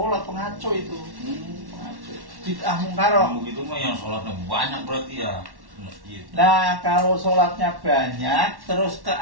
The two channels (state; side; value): late; left; 1.1 ms